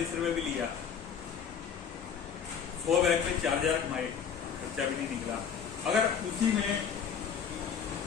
रुपए भी लिया, 100 बैग में 4000 कमाए, खर्चा भी नहीं निकला। अगर उसी में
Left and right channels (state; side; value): quieter; right; 7.2 dB